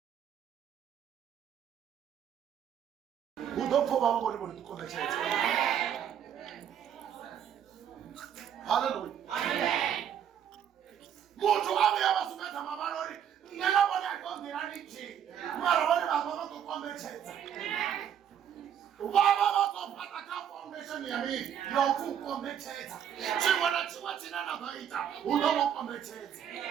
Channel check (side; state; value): left; quieter; 9.3 dB